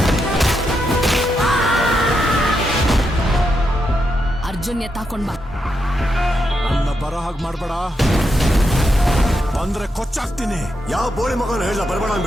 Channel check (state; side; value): normal; both; correlation 0.83